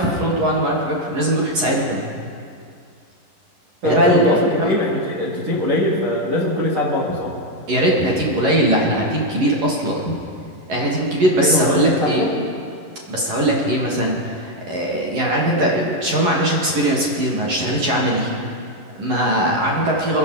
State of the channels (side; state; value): left; late; 11 ms